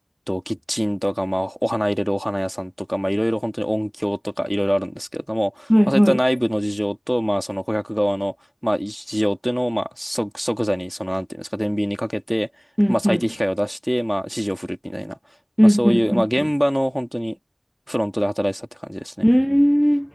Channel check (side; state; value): both; identical; correlation 1.00